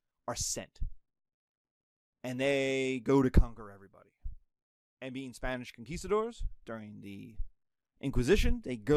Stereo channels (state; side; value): identical; both; correlation 1.00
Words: are sent. And they go to conquer everybody. And being Spanish conquistadors during the Inquisition, they